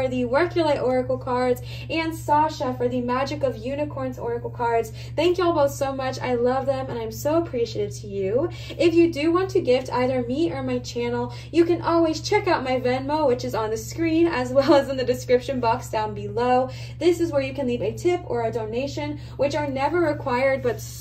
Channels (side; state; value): both; identical; correlation 1.00